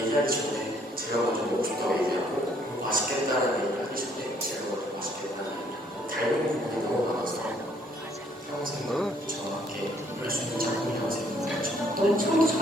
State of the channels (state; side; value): normal; both; correlation 0.65